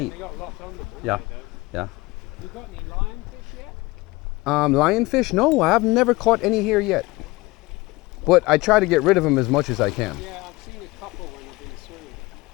They got lots on them. Yeah. They don't. Yeah. You got any lionfish yet? Lionfish? No, I have never caught any here yet. But I try to get rid of them as much as I can. Yeah, I've seen a couple when I've been swimming.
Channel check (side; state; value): right; quieter; 21.8 dB